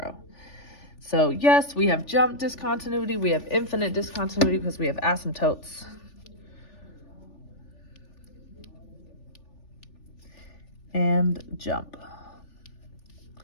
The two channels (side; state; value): right; late; 3.4 ms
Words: So yes, we have jump discontinuity. We have infinite discontinuity because we have asymptotes. And jump.